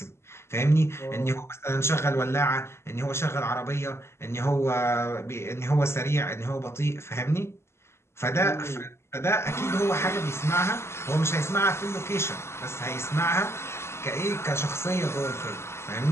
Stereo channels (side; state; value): right; late; 0.13 ms